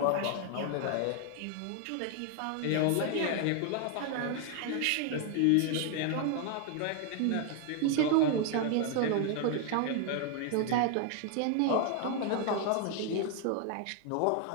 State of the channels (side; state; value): both; different; correlation 0.00